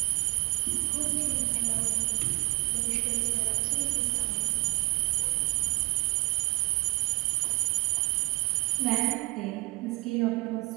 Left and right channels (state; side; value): quieter; left; 25.9 dB